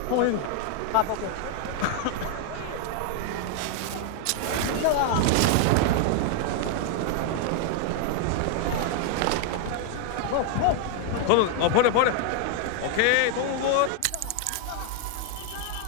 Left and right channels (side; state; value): both; different; correlation 0.00